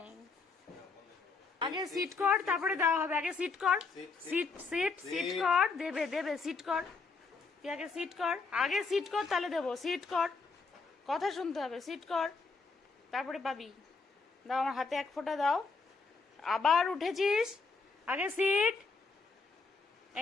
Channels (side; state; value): right; quieter; 4.4 dB